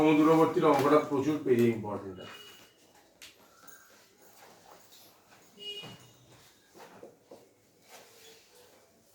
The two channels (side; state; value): both; identical; correlation 1.00